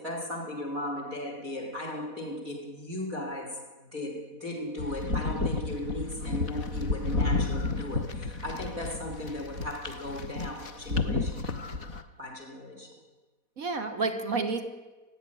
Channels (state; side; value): late; left; 4.1 ms